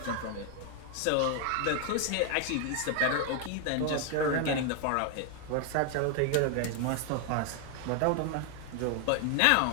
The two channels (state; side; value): different; both; correlation 0.00